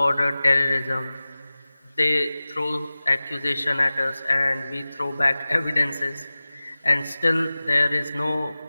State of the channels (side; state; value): both; inverted; correlation -0.97